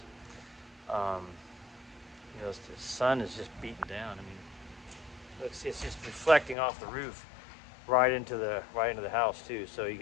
you know, the sun is just beating down. I mean, it's just reflecting off the roof right into the house too. So you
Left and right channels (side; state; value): right; drops out; at 6.6 s